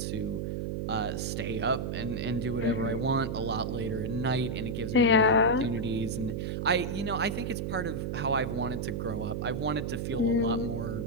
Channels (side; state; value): right; noise; hum, 2 dB below the sound